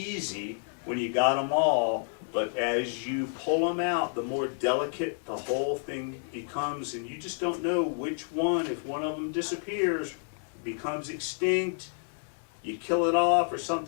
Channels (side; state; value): right; silent; 58 dB below the other